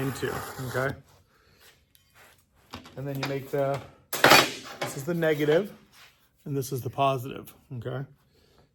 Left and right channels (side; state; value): both; identical; correlation 1.00